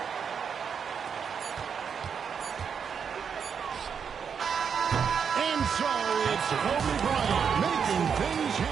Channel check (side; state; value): left; quieter; 6.8 dB